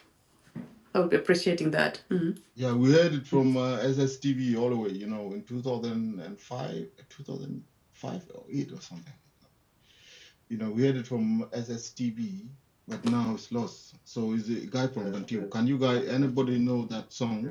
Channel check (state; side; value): identical; both; correlation 1.00